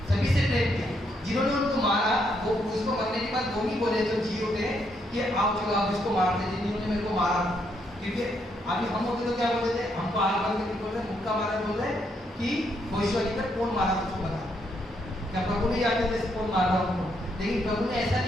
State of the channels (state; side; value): normal; both; correlation 0.75